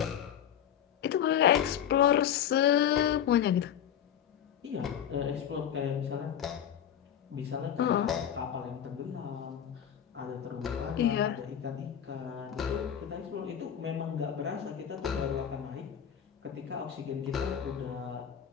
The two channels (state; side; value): quieter; right; 9.4 dB